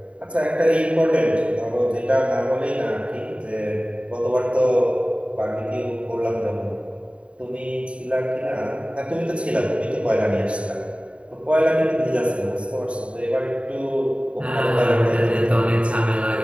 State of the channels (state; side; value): late; left; 0.061 ms